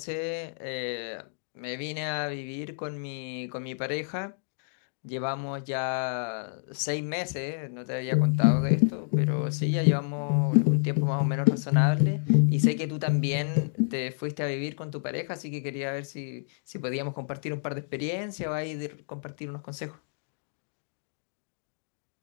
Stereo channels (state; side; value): silent; right; digital silence